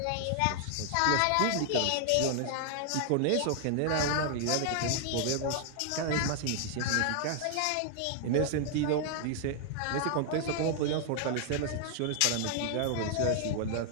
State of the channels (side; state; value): both; different; correlation 0.00